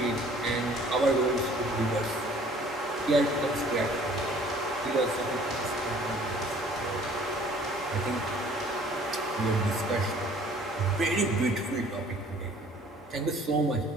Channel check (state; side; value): normal; both; correlation 0.54